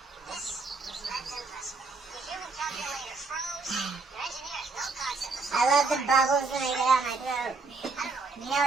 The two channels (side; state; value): left; quieter; 4.0 dB